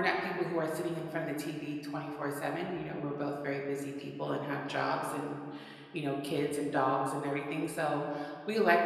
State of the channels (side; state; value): both; identical; correlation 1.00